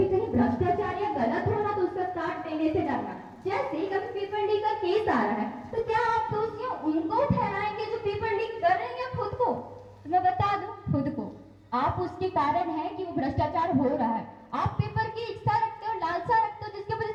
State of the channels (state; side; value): identical; both; correlation 1.00